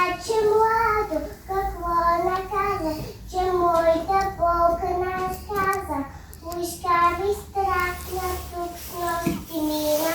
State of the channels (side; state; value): both; identical; correlation 1.00